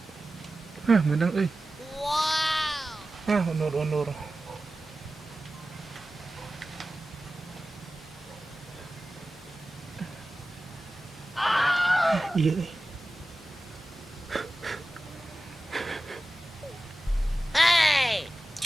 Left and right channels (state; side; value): normal; both; correlation 0.95